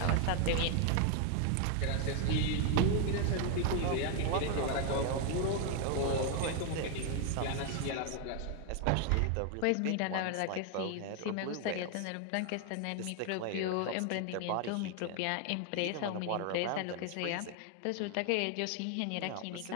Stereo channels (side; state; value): both; different; correlation 0.00